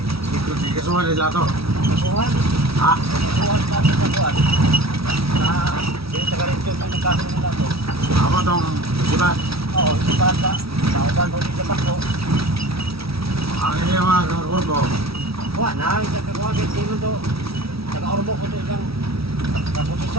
di kasuhan nila to. Kasuhan. Ha? Kasuhan natin sa buwan. Na, sinasagarin mo ng kaso nila to. Ako tong isipan. Oo, si Banda. Nauban mo dito pa ko. Ang iya mga kakurbo. Wah, na, isa ka kuha, hindi mo to. Taga-ormo ko to isang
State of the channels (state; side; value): late; left; 0.76 ms